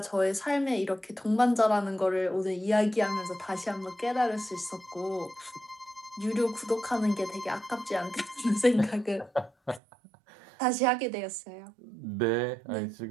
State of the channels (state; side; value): drops out; left; at 9.8 s